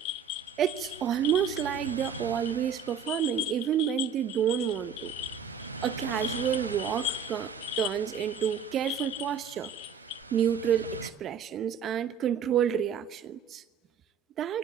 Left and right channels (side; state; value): left; quieter; 6.7 dB